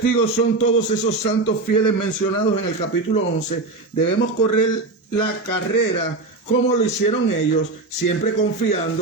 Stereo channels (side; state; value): left; quieter; 3.4 dB